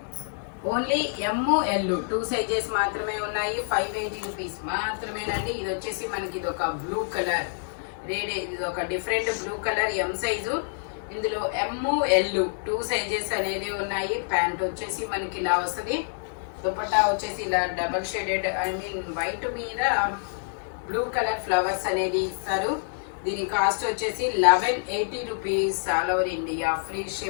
ఓన్లీ ఎమ్, ఎల్ 2 సైజెస్ మాత్రమే ఉన్నాయి. 580 రూపీస్ మాత్రమేనండి. ఇది వచ్చేసి మనకి ఇది ఒక బ్లూ కలర్. ఇది ఒక different blue colour M size. ఇందులో ఎమ్ ఎల్ 2 సైజెస్ అనేది ఉన్నాయి. ప్యాంట్ వచ్చేసి మనకి ఇలా వస్తుంది. దుపట్టా వచ్చేసి ఇలా డబల్ షేడెడ్ వైట్ మీద బ్లూ కలర్ ఫ్లవర్స్ అనేది ఇస్తారు. దీని కాస్ట్ వచ్చేసి 1180 rupees. All over India free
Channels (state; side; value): silent; right; digital silence